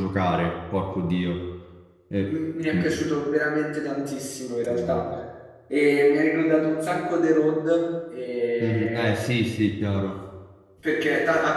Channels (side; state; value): both; identical; correlation 1.00